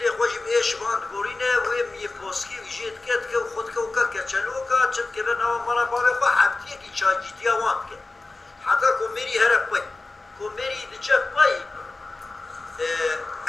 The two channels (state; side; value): quieter; right; 3.3 dB